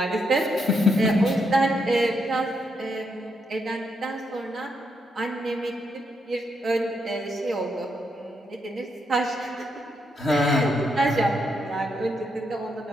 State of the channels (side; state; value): both; normal; correlation 0.80